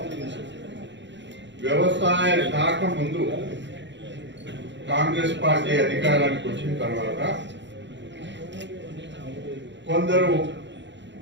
వ్యవసాయ శాఖ ముందు కాంగ్రెస్ పార్టీ అధికారానికి వచ్చిన తర్వాత కొందరు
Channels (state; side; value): late; left; 0.52 ms